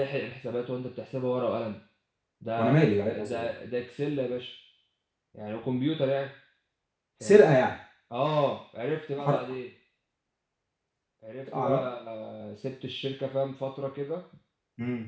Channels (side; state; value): both; identical; correlation 1.00